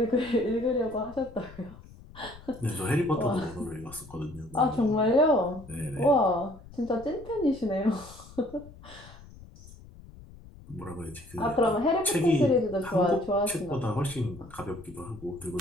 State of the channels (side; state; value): left; noise; rumble, 19 dB below the sound